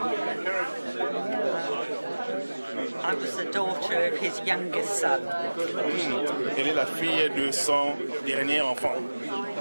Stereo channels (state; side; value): inverted; both; correlation -1.00